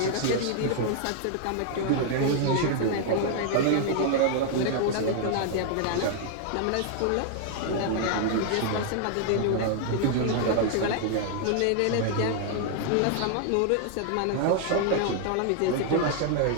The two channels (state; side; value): different; both; correlation 0.00